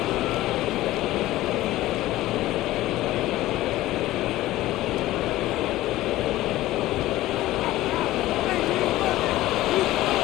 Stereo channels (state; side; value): quieter; right; 16.2 dB